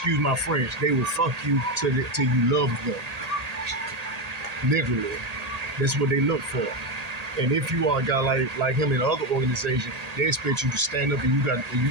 my French. They will fuck you till you love them. Literally. That's what they look for. And if you are a guy like him in other organizations, they expect you to stand up and you got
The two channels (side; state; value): left; late; 1.8 ms